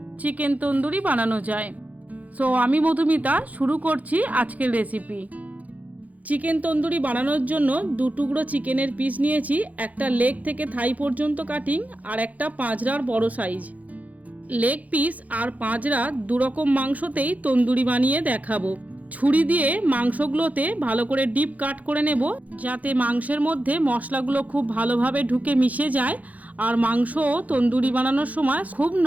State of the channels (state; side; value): late; left; 0.075 ms